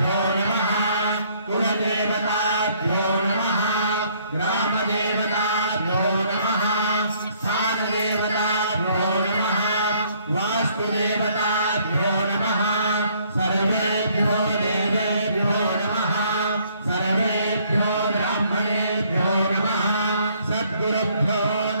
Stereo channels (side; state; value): both; inverted; correlation -0.64